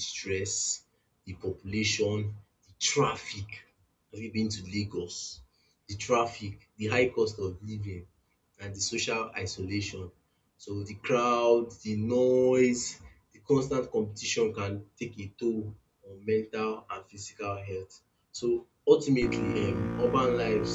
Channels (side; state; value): both; identical; correlation 1.00